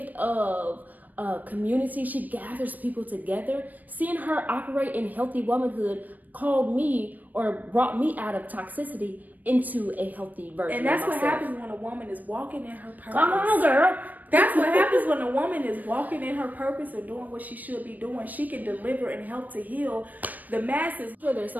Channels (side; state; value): left; late; 0.082 ms